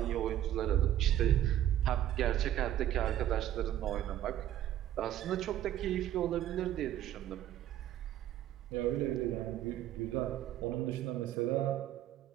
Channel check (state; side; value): quieter; left; 12.2 dB